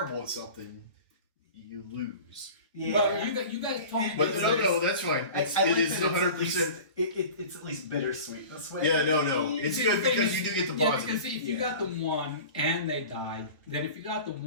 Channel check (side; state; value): both; inverted; correlation -0.38